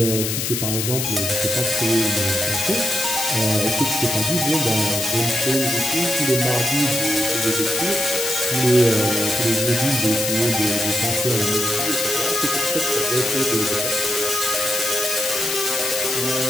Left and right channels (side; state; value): left; noise; hiss, 1 dB below the sound